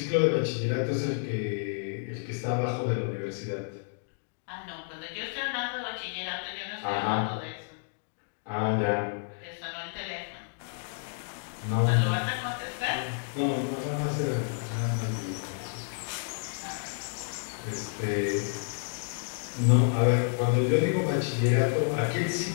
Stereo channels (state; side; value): silent; right; digital silence